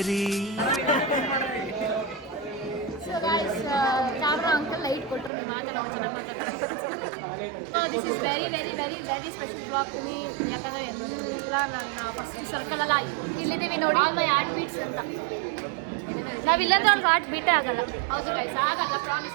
So guys camera uncle light ಕೊಟ್ಟರು. ನೀವು ಮಾತಾಡೋ ಚೆನ್ನಾಗಿ ಮಾತಾಡ್ತಾರೆ. This is very very very very special blog to me. ಯಾಕಂದರೆ ಎಲ್ಲ ನನ್ನ ಫಸ್ಟ್ ಸರ್ಕಲೆಲ್ಲ ಇಲ್ಲಿದ್ದೀವಿ ನೋಡಿ. ಆಲ್ ಮೈ ಹಾರ್ಟ್ ಬೀಟ್ಸ್ ಅಂತ. ನಾವಿಲ್ಲಂದ್ರೆ ಅವ್ರಿಗೆ ಹಾರ್ಟ್ ಬೀಟೇ ಆಗಲ್ಲ. ಹೌದು ಗೈಸ್, ಆಗಲ್ಲ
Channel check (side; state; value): left; drops out; at 5.3 s